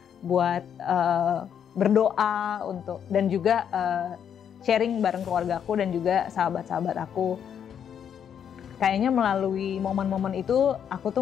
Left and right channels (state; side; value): quieter; right; 8.5 dB